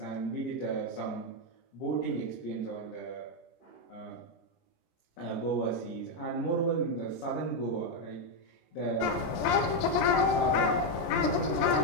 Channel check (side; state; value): right; late; 17 ms